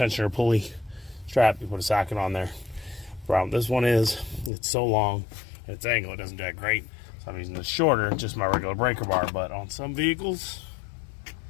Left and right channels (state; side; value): drops out; right; at 4.5 s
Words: pulley strap. You put a socket on there. Problem this one is, it's so long, its angle, it doesn't do that great. So I'm using this shorter, just my regular breaker bar. But on some vehicles,